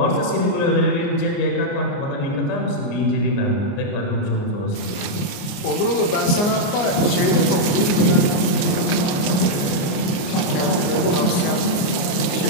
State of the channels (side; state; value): right; late; 28 ms